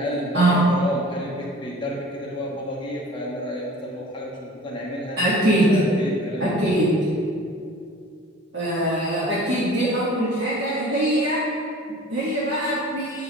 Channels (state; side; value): normal; both; correlation 0.44